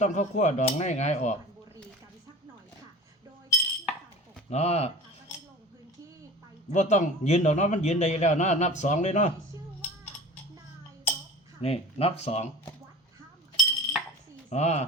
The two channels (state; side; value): normal; both; correlation 0.38